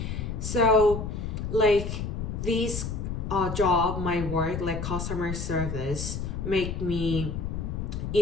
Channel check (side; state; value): left; noise; rumble, 4 dB below the sound